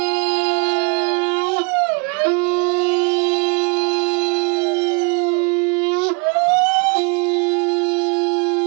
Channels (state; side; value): quieter; left; 33.9 dB